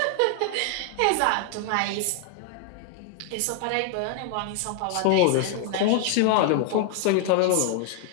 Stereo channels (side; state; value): both; different; correlation 0.00